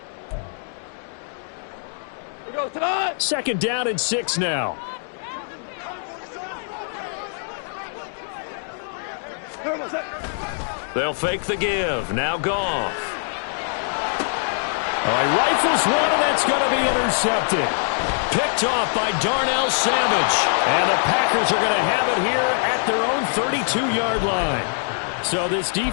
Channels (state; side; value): silent; right; 63 dB below the other